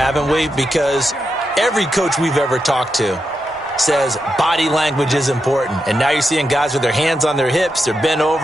we? Because every coach we've ever talked to says body language is important. And now you're seeing guys with their hands on their hips, they're bent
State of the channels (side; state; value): both; normal; correlation 0.86